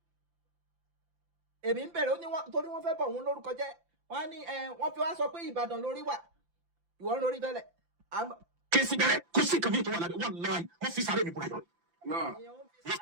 èmi ń bẹ̀rẹ̀ ó ní torí wọ́n fẹ́ bọ̀ òun lórúkọ jẹ́ wọ́n ní wọ́n fi wá sọ pé Ìbàdàn lórí wà ìwọ ń rorí tẹ́lẹ̀. kí n sì bẹ̀rẹ̀ kó sì kàn mí tó wà lábẹ́ wọ́n láì wọ́n fi sáré mi búra yọ. èèyàn ń fi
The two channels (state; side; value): late; left; 5.8 ms